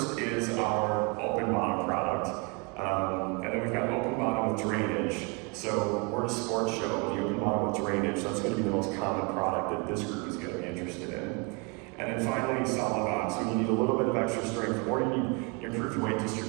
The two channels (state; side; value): quieter; left; 31.3 dB